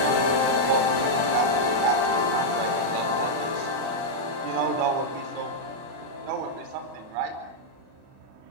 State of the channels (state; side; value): late; left; 37 ms